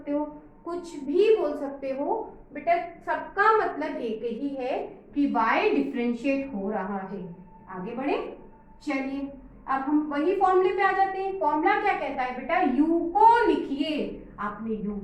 हो, कुछ भी बोल सकते हो बेटा, सबका मतलब एक ही है कि y डिफरेंशिएट हो रहा है। आगे बढ़े, चलिए अब हम वही फॉर्मूले पे आ जाते हैं। फॉर्मूला क्या कहता है बेटा, u को लिखिए, आपने u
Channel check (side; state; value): both; identical; correlation 1.00